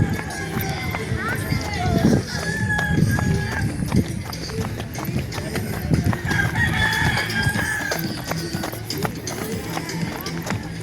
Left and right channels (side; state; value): both; identical; correlation 1.00